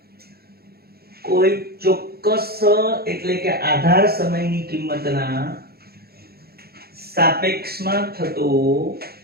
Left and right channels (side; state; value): left; late; 0.45 ms